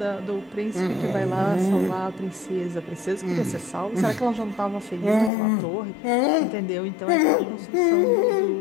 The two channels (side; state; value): right; drops out; at 5.3 s